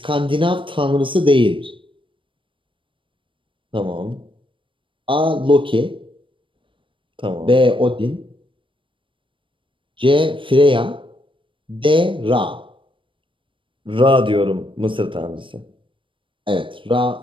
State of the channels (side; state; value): left; late; 0.25 ms